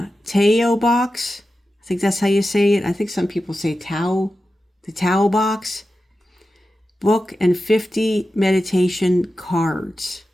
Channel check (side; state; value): both; normal; correlation 0.92